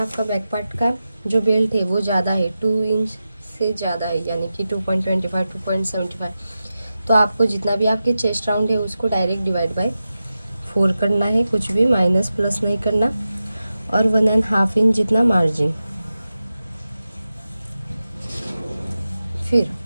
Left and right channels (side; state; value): both; inverted; correlation -0.92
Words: बैक पार्ट का जो बेल्ट है वो ज़्यादा है, 2 इंच से ज़्यादा है, यानी कि 2.25 2.75, तो आपको जितना भी आपके चेस्ट राउंड है उसको डायरेक्ट डिवाइड बाय 4 करना है, कुछ भी माइनस प्लस नहीं करना। और 1.5 इंच जितना मार्जिन। फिर